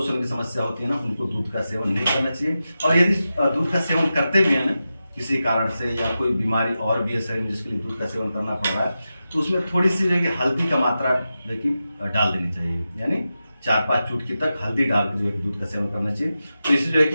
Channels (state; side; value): inverted; both; correlation -0.92